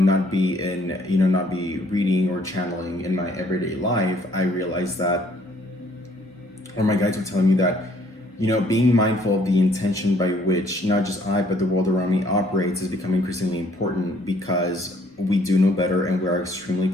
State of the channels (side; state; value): both; normal; correlation 0.63